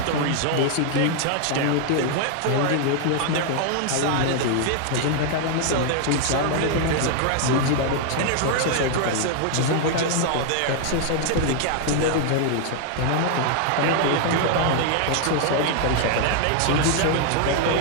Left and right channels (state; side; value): different; both; correlation 0.00